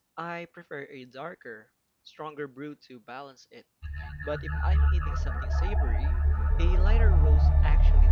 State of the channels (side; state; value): both; identical; correlation 1.00